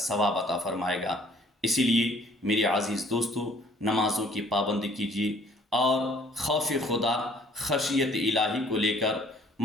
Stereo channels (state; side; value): normal; both; correlation 0.57